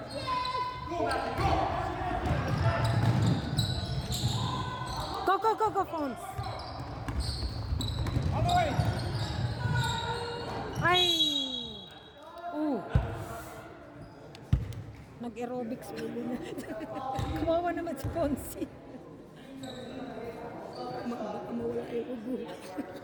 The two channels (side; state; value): both; identical; correlation 1.00